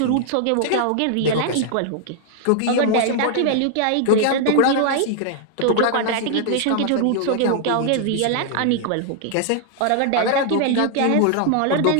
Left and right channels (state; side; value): different; both; correlation -0.01